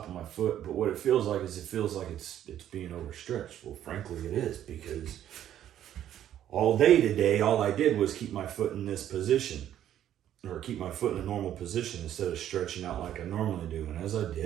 of my foot. But what it feels like is it's being overstretched. Well, frankly, it is, because all day today, all I did was keep my foot in this position, or keep my foot in a normal position instead of stretching out like I normally do. And as I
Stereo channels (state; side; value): quieter; left; 11.1 dB